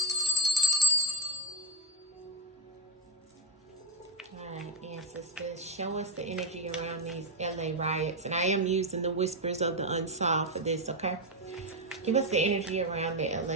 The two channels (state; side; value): normal; both; correlation 0.13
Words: All right, ancestors, show us the energy around these LA riots. And I am using the whispers of the unsolved for this, okay? Give us the energy around the